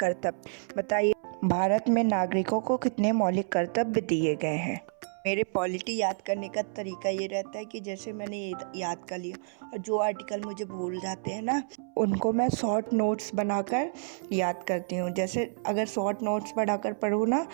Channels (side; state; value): left; silent; 58 dB below the other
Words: बताइए भारत में नागरिकों को कितने मौलिक कर्तव्य दिए गए हैं। मेरे पॉलिटी याद करने का तरीका ये रहता है कि जैसे मैंने याद कर लिया और जो आर्टिकल मुझे भूल जाते हैं ना, उनको मैं शॉर्ट नोट्स बनाकर याद करती हूँ। जैसे अगर शॉर्ट नोट्स बनाकर पढ़ूँ ना